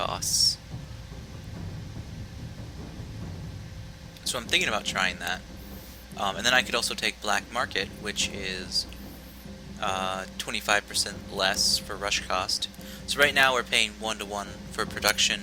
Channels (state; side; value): identical; both; correlation 1.00